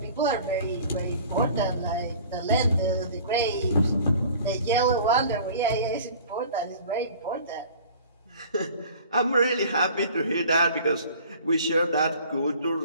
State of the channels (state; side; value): inverted; both; correlation -0.46